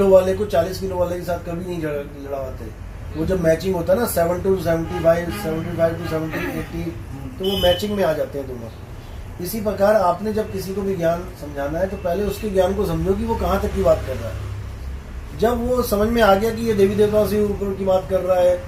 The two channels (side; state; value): both; identical; correlation 1.00